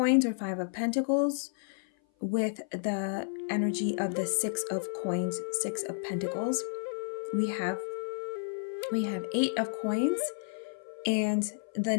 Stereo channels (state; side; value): silent; right; 56 dB below the other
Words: or Five of Pentacles with the energy of the Six of Coins, Six of Pentacles. We have Eight of Coins and the